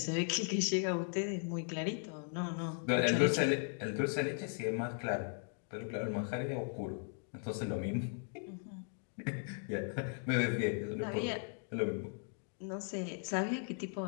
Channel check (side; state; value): right; silent; 53 dB below the other